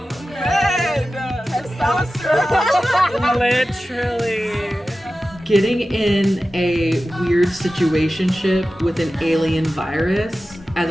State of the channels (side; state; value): both; normal; correlation 0.94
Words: Testosterone. Literally. Getting in a weird situationship with an alien virus as